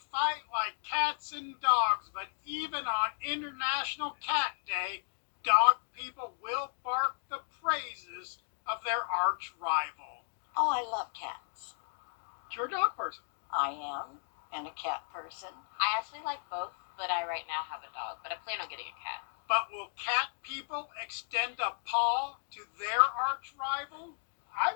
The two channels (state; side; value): silent; right; digital silence